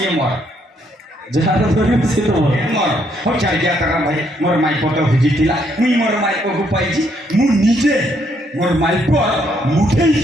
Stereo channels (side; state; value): both; normal; correlation 0.72